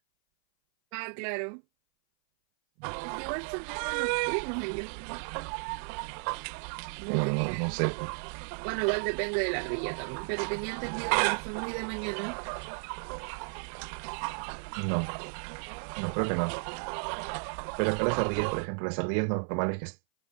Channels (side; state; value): left; silent; 56 dB below the other